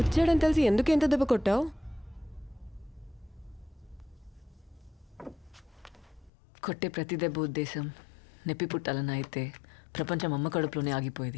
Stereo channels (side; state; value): right; drops out; at 6.3 s